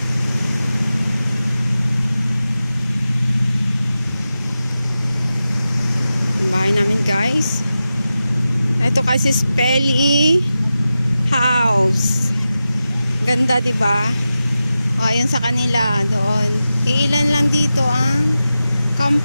Yung bahay namin, guys. Ito kasi Spelly house. Ganda, 'di ba? O ayun sa kanila doon. Iilan lang dito ang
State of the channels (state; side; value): inverted; both; correlation -0.93